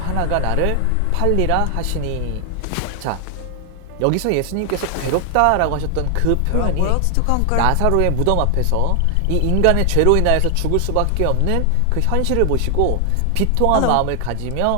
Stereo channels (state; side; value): different; both; correlation 0.00